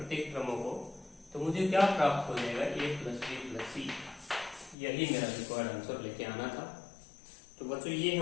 क्रमों को, तो मुझे क्या प्राप्त हो जाएगा A plus B plus C। यही मेरा रिक्वायर्ड आंसर लेके आना था। तो बच्चों ये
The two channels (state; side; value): drops out; right; at 4.8 s